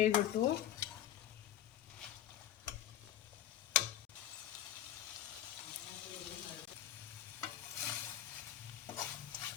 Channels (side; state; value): right; quieter; 11.8 dB